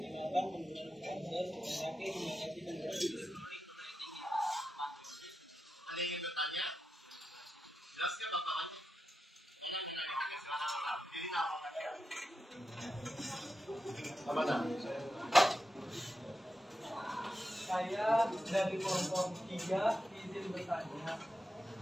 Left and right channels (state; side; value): normal; both; correlation 0.89